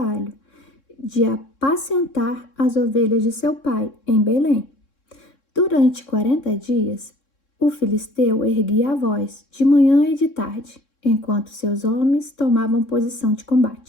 de apacentar as ovelhas de seu pai em Belém. Durante 40 dias, o filisteu erguia a voz de manhã e de tarde, enquanto seus homens tomavam posição de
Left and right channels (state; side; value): late; right; 3.6 ms